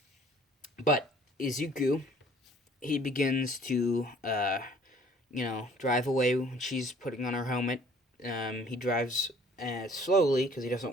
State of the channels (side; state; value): both; normal; correlation 0.55